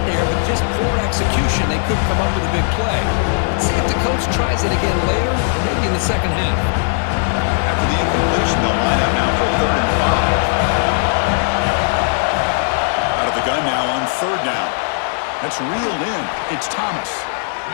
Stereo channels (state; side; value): silent; right; 61 dB below the other